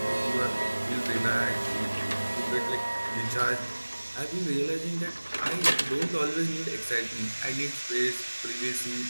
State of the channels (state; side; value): inverted; both; correlation -1.00